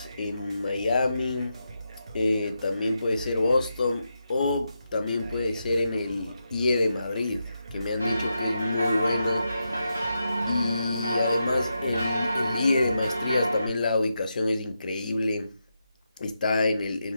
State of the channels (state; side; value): inverted; both; correlation -0.86